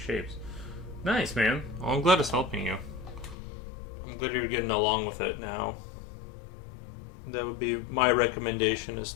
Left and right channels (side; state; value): right; drops out; at 3.4 s